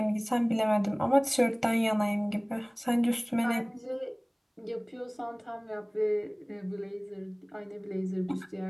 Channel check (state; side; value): identical; both; correlation 1.00